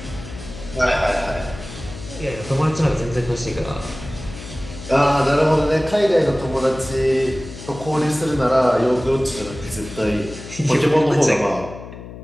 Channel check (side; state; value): left; noise; hum, 13 dB below the sound